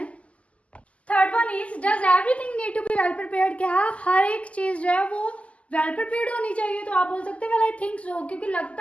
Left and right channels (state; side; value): late; right; 0.064 ms